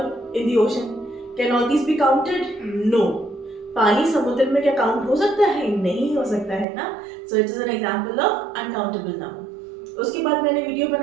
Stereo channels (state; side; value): drops out; left; at 6.7 s